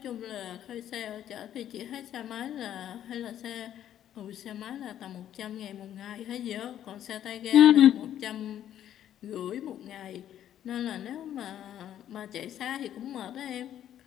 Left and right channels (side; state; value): right; quieter; 10.9 dB